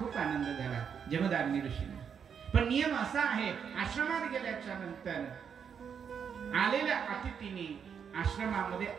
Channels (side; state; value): left; quieter; 7.2 dB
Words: आनंद झाला, जमदाग्नी ऋषींना. पण नियम असा आहे, आश्रमात गेल्याच्या नंतर आलेल्या अतिथीने आश्रमामध्ये